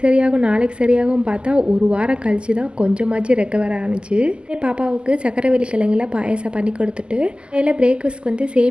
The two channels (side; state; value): left; late; 0.050 ms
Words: சரியாகும் நாளைக்கு சரியாகும் பார்த்தா 1 வாரம் கழிச்சு தான் கொஞ்சமாச்சு ரெக்கவர் ஆணுச்சு. பாப்பாவுக்கு சக்கரவள்ளி கிழங்குல பாயசம் பண்ணி கொடுத்துட்டு அதில் பிரேக்ஃபாஸ்ட்க்கு வந்து